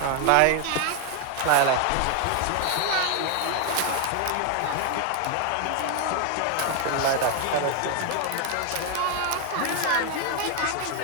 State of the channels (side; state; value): both; different; correlation 0.00